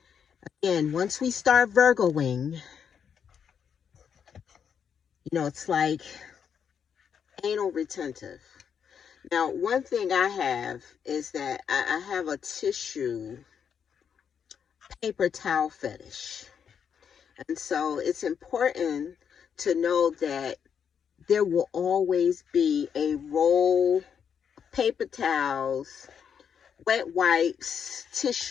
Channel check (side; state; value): right; quieter; 7.5 dB